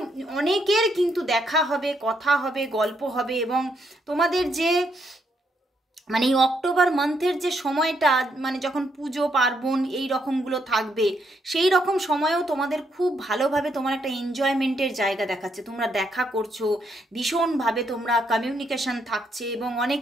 অনেকের কিন্তু দেখা হবে, কথা হবে, গল্প হবে, এবং তোমাদের যে মানে এই অক্টোবর মান্থের যে সময়টা, মানে যখন পুজো পার্বণ এই রকমগুলো থাকবে, সেই রকম সময়েও তোমাদের খুব ভালোভাবে তোমার একটা এনজয়মেন্টের জায়গা দেখাচ্ছে। তোমরা দেখা করছো ভীষণভাবে, তোমরা কমিউনিকেশন থাকছে, এবং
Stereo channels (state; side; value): normal; both; correlation 0.76